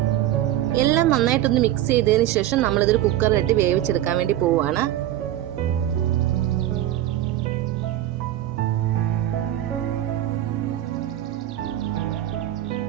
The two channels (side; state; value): left; quieter; 13.1 dB